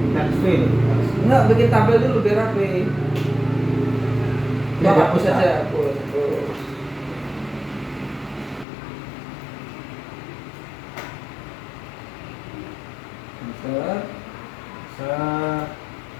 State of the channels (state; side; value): drops out; right; at 8.7 s